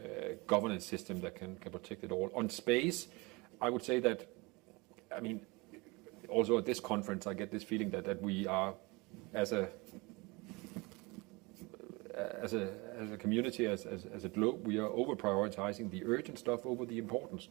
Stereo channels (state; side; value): quieter; left; 25.8 dB